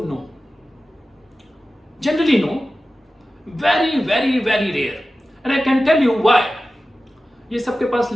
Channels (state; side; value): normal; both; correlation 0.95